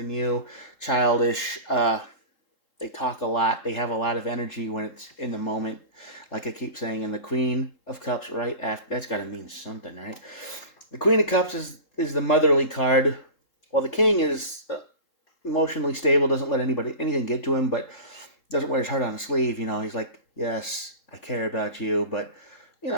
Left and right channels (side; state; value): right; late; 3.7 ms